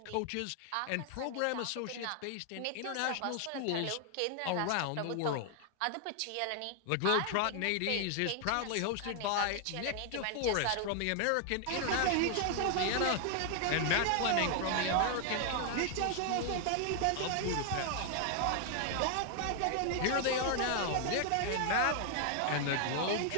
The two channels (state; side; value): different; both; correlation 0.00